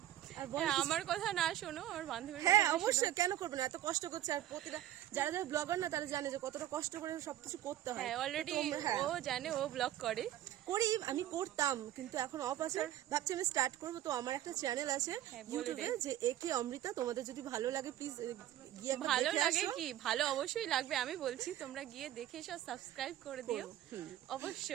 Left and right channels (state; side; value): quieter; left; 12.7 dB